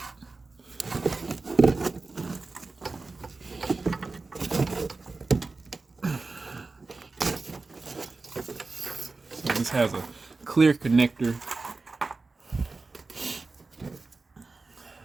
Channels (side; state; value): left; quieter; 3.8 dB